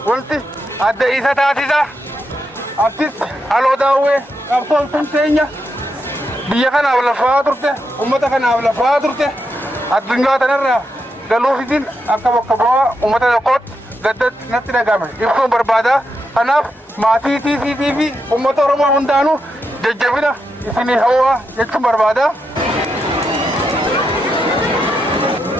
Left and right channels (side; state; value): both; normal; correlation 0.84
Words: ولتي أدى إيسا تاتيزا أبتس ألو داوي أبطل تنتينيا بيا كان أولا فاترته أمتا كان أولا فاترته الدنيا تنرى قالوا في دين أكا وكبوا أمتا يقود قدت نتنا قامل يبقون بربادا أناف ما في أمتا رمى هندانو ججبنا إسني هوا يكتم بربادا